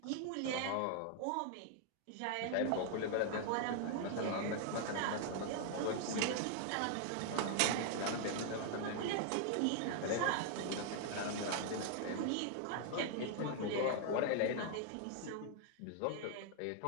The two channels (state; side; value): different; both; correlation 0.00